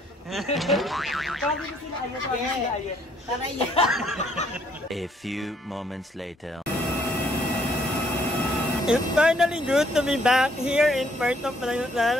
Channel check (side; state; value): both; normal; correlation 0.67